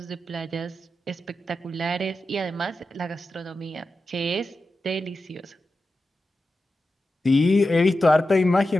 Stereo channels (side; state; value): both; normal; correlation 0.91